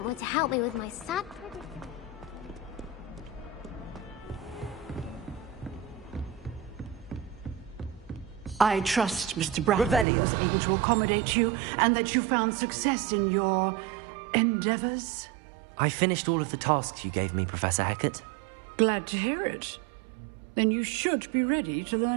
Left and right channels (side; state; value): left; drops out; at 10.1 s